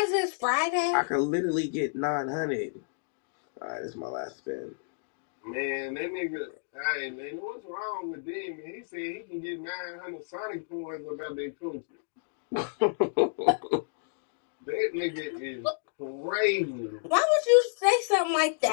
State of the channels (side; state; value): right; silent; digital silence